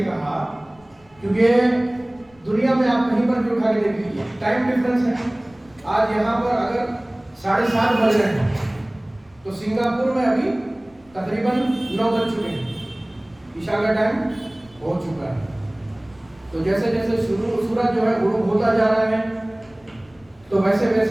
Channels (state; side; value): noise; left; rumble, 30 dB below the sound